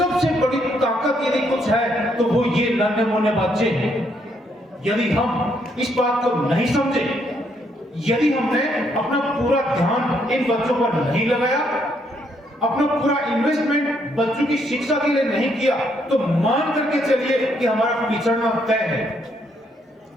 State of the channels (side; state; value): both; normal; correlation 0.73